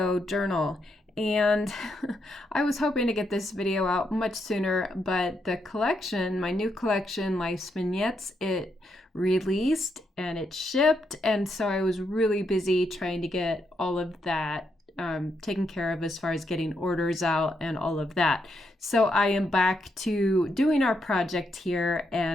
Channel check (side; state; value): both; normal; correlation 0.80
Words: journal, and I was hoping to get this video out much sooner, but the collection, my new collection, Life's Vignettes, it released and it shipped, and so I was really busy trying to get all of that taken care of as far as getting orders out and all of that. So I am back to doing our project here